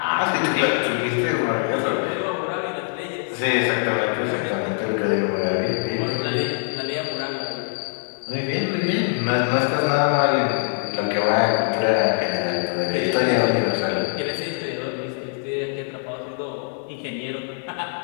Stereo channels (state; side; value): silent; right; digital silence